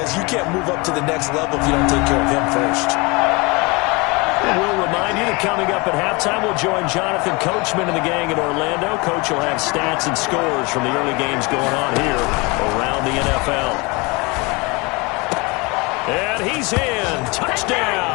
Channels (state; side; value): quieter; right; 26.7 dB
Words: you can't move up to the next level if you don't take care of him first. We'll remind you that coming up at halftime, we'll join Jonathan Coachman and the gang in Orlando. Coach will have stats and scores from the early games going on here around the NFL. And he's in.